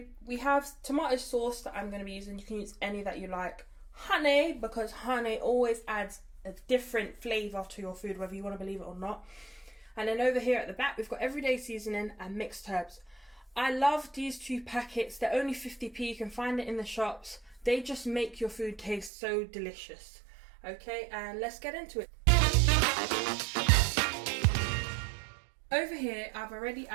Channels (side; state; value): left; drops out; at 19.1 s